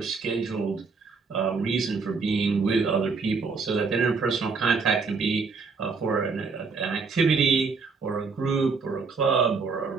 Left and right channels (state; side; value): quieter; left; 4.6 dB